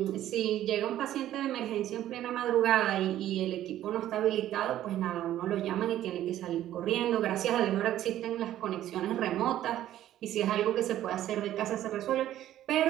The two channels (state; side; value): quieter; left; 12.7 dB